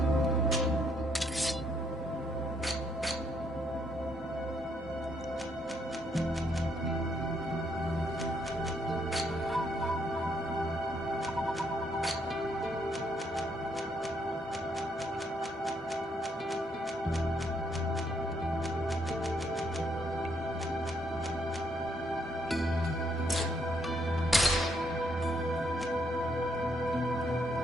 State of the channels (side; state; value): both; normal; correlation 0.73